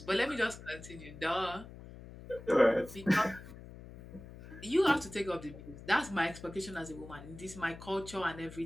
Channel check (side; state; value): left; noise; hum, 15 dB below the sound